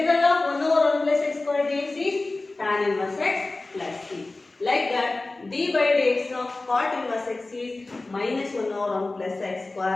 of 1 over 1 plus x square dx is tan inverse x plus c. Like that d by dx of cot inverse x is minus 1 over 1 plus x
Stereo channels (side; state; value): right; quieter; 3.2 dB